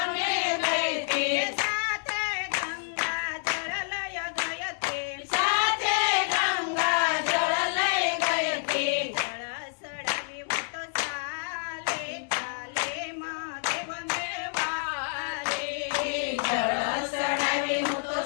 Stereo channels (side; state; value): right; silent; digital silence